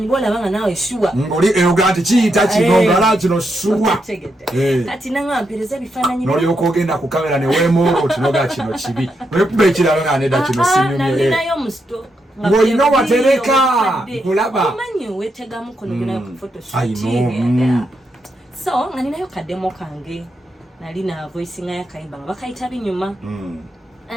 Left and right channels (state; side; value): normal; both; correlation 0.82